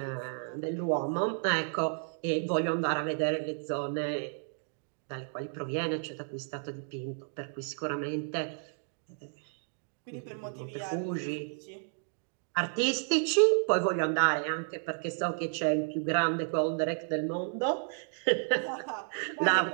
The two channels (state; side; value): silent; left; 56 dB below the other